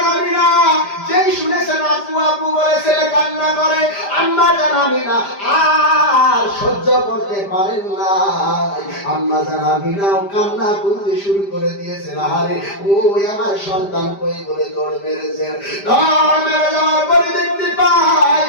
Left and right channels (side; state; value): right; late; 5.0 ms